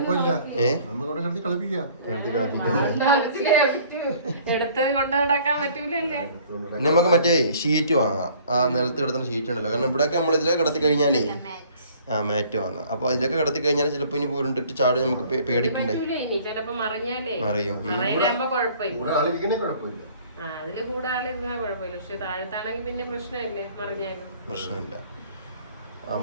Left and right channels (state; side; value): inverted; both; correlation -0.55